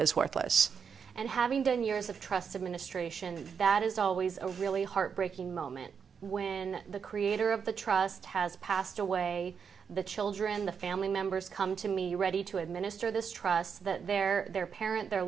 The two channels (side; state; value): left; quieter; 6.6 dB